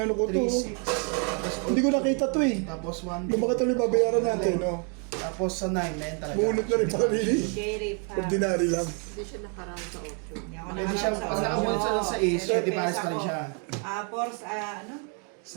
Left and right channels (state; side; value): quieter; left; 39.0 dB